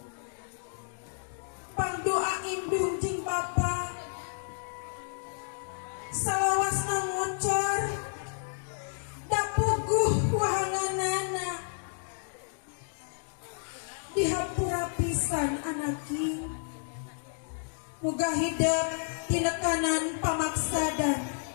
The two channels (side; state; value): right; silent; digital silence